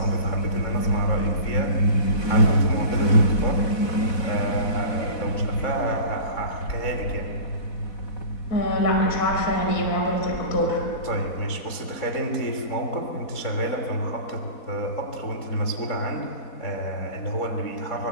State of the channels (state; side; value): late; right; 4.2 ms